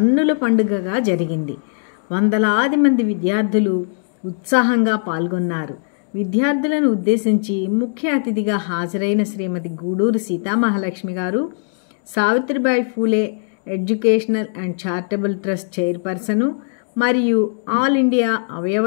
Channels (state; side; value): silent; right; digital silence